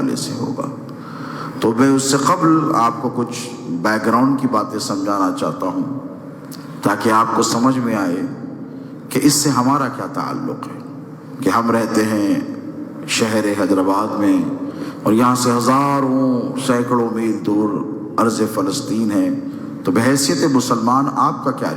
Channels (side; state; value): both; identical; correlation 1.00